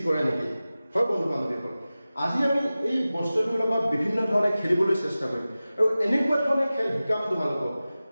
কৰে নেকি হয় বন্ধু বান্ধৱীসকল আজি আমি এই বস্তুটোৰ লগত বিভিন্ন ধৰণে খেলিবলৈ চেষ্টা কৰিম আৰু এনেকুৱা ধৰণে খেল শিকাম তোমালোকক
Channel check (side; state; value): both; inverted; correlation -0.96